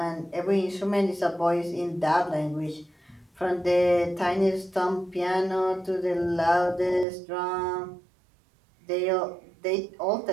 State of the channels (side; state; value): left; drops out; at 7.1 s